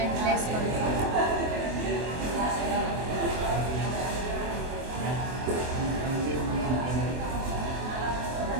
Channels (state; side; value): late; left; 24 ms